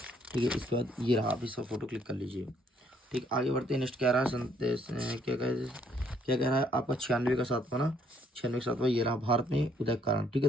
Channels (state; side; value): normal; both; correlation 0.67